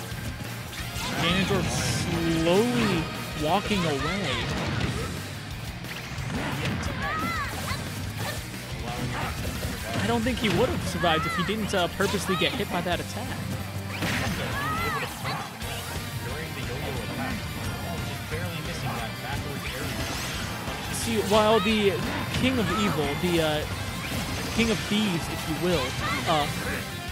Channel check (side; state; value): both; identical; correlation 1.00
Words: Ganondorf slowly walking away. I don't think he would have survived if he didn't purposely get hit by that attack. See, while the King of Evil, the King of Thieves, if you will,